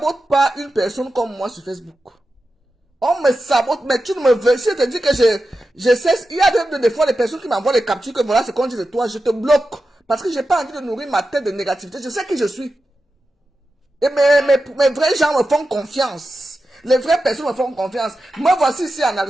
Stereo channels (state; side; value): normal; both; correlation 0.91